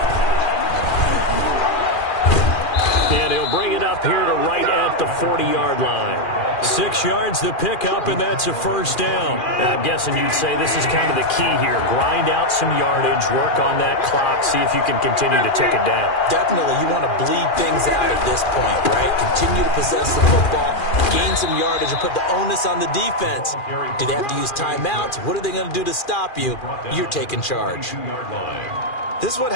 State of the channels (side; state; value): right; late; 2.4 ms